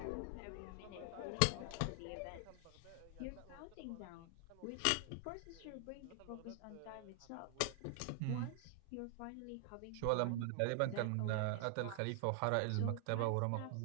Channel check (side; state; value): both; different; correlation 0.00